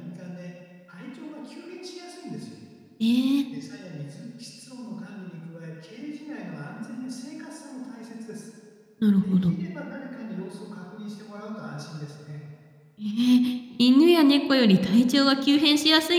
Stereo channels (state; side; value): identical; both; correlation 1.00